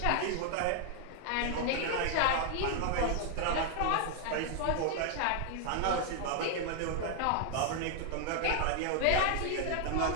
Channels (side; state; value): both; different; correlation 0.00